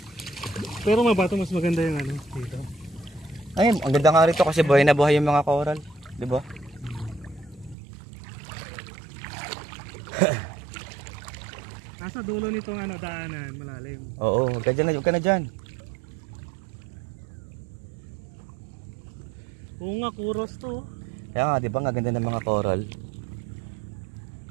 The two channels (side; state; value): left; drops out; at 7.8 s